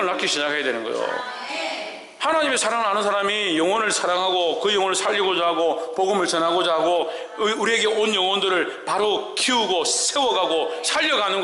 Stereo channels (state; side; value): identical; both; correlation 1.00